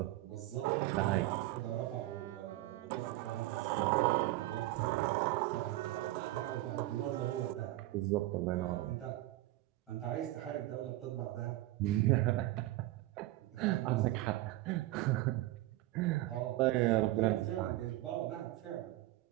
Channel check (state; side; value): quieter; left; 17.0 dB